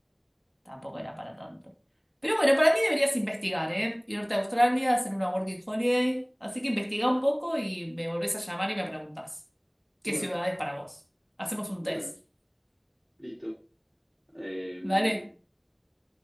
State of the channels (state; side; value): identical; both; correlation 1.00